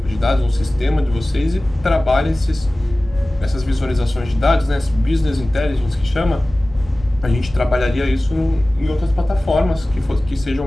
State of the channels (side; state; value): both; normal; correlation 0.98